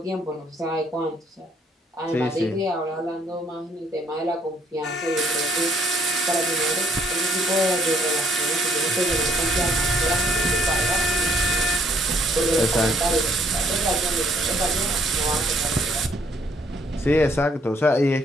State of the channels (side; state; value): both; normal; correlation 0.65